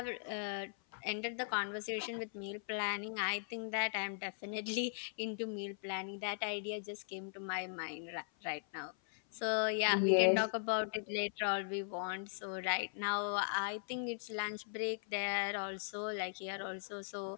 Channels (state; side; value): silent; right; 52 dB below the other